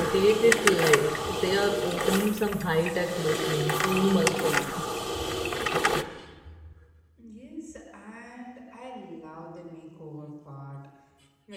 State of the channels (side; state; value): both; identical; correlation 1.00